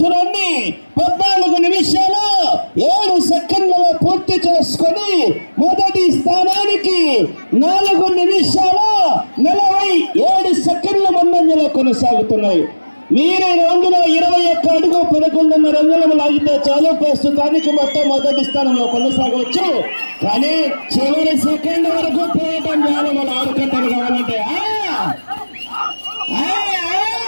14 నిమిషాలు 7 సెకండ్లలో పూర్తి చేసుకొని మొదటి స్థానానికి 4 నిమిషాలు 47 సెకండ్ల ముందంజలో కొనసాగుతున్నాయి. మీరు రౌండ్లో 21 అడుగు 11.5 అంగుళం లాగితే చాలు, ప్రస్తుతానికి మొత్తం మొదటి స్థానంలో కొనసాగవచ్చు. కానీ చివరి సెకండ్ వరకు పోయటం చాలా మన ఆడుకుంటారు కావాలంటే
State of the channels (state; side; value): inverted; both; correlation -1.00